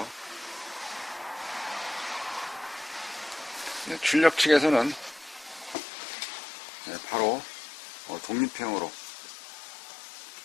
네, 출력 측에서는 바로 독립형으로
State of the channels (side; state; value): right; drops out; at 5.8 s